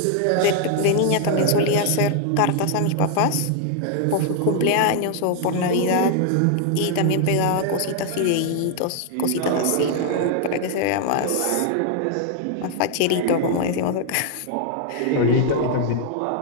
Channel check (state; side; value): different; both; correlation 0.00